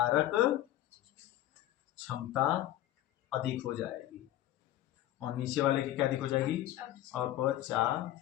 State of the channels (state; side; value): quieter; right; 13.9 dB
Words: क्षमता अधिक हो जाएगी, और नीचे वाले की क्या अधिक हो जाएगी?